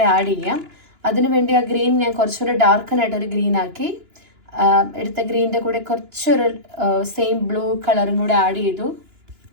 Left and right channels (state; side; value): late; left; 2.9 ms